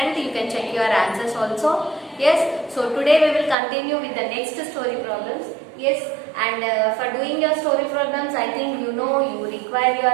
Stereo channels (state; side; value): drops out; left; at 3.6 s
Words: You can check your answers also. Yes, so today we will continue with the next story problems. Yes, and for doing your story problems, I think you know you require